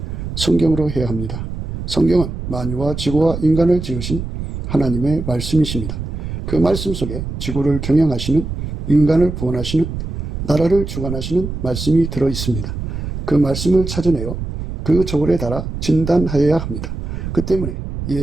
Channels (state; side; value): noise; right; rumble, 6 dB below the sound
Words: 성경으로 해야 합니다. 성경은 만유와 지구와 인간을 지으신 하나님의 말씀이십니다. 그 말씀 속에 지구를 경영하시는, 인간을 구원하시는, 나라를 주관하시는 말씀이 들어있습니다. 그 말씀을 찾아내어 그 저울에 달아 진단하여야 합니다. 그 때문에